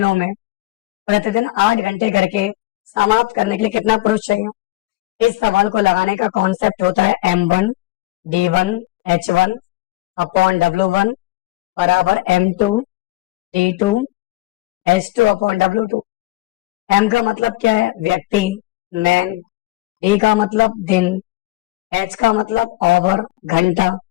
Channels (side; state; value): right; quieter; 18.5 dB